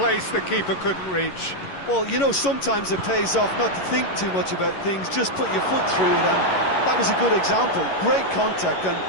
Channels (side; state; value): right; late; 11 ms